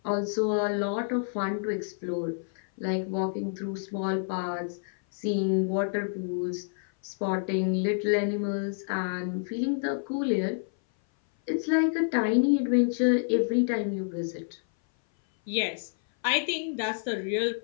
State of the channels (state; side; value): silent; right; 57 dB below the other